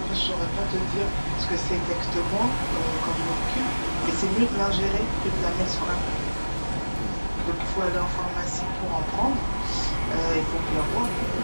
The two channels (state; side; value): inverted; both; correlation -1.00